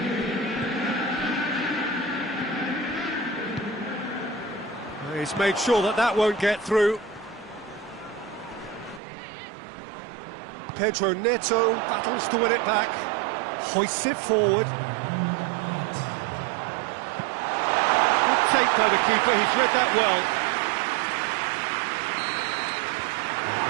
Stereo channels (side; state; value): left; drops out; at 9.0 s